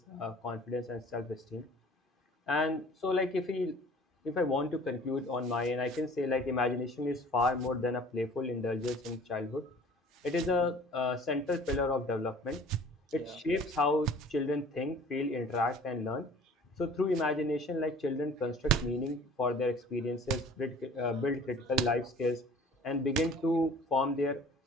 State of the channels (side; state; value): both; normal; correlation 0.48